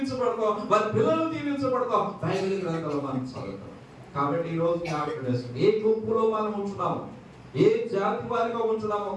వారి పిల్లలు దీవించబడతాం. బైబిల్ గ్రంథంలో మనం చదువుతాం. కాబట్టి ఈ రోజు ఏ గుంపులో మనం ఉంటున్నాము, ఏ జాతి వారిగా ఉంటున్నామో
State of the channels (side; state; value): both; identical; correlation 1.00